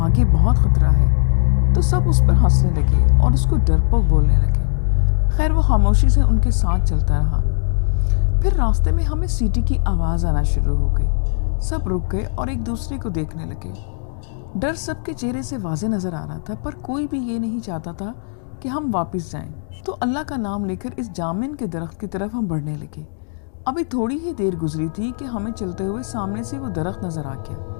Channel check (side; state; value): right; silent; digital silence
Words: بہت خطرہ ہے. تو سب اس پر ہنسنے لگے اور اس کو ڈرپوک بولنے لگے. خیر وہ خاموشی سے ان کے ساتھ چلتا رہا. پھر راستے میں ہمیں سیٹی کی آواز آنا شروع ہو گئی. سب رک گئے اور ایک دوسرے کو دیکھنے لگے. ڈر سب کے چہرے سے واضح نظر آ رہا تھا پر کوئی بھی یہ نہیں چاہتا تھا کہ ہم واپس جائیں. تو اللہ کا نام لے کر اس جامن کے درخت کی طرف ہم بڑھنے لگے. ابھی تھوڑی ہی دیر گزری تھی کہ ہمیں چلتے ہوئے سامنے سے وہ درخت نظر آ گیا.